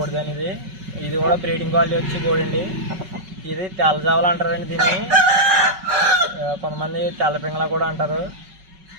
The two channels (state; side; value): late; left; 5.3 ms